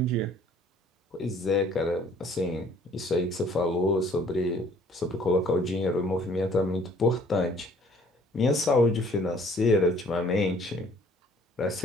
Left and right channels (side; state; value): both; normal; correlation 0.57